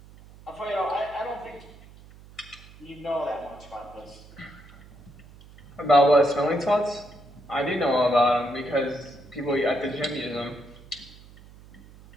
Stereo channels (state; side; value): noise; right; hum, 21 dB below the sound